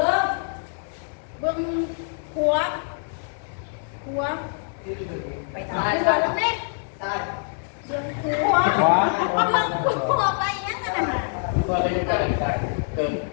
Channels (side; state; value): right; silent; 62 dB below the other